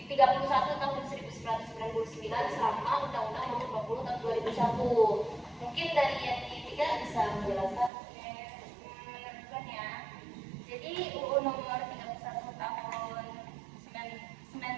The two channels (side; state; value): left; drops out; at 7.9 s